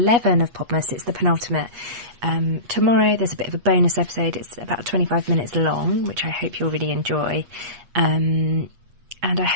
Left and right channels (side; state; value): left; late; 8.4 ms